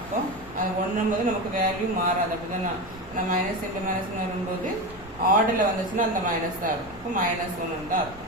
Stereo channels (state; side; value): normal; both; correlation 0.20